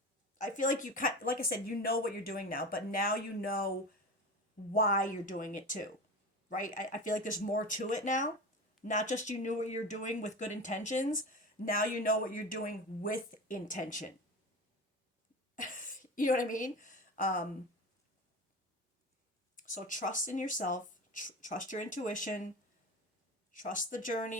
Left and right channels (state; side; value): normal; both; correlation 0.29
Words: I feel like you, like I said, you know what you're doing now, but now you know why you're doing it too, right? I feel like there's more to it now. Not just you knew what you're doing with good intentions, now you know what you're doing with intention. You know what I mean? So trust in yourself, trust your intuition, trust the